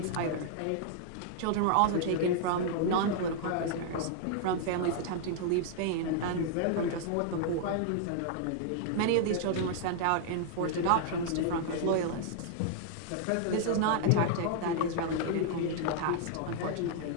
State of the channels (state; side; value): different; both; correlation -0.01